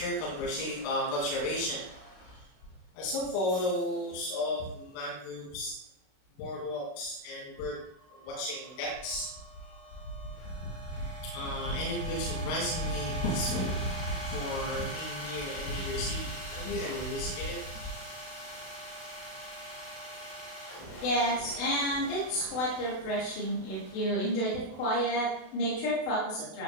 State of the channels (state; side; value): late; right; 32 ms